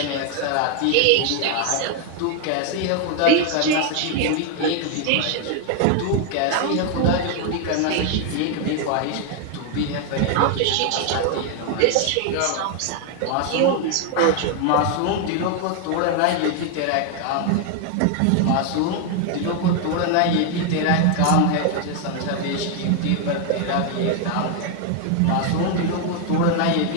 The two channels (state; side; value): different; both; correlation 0.00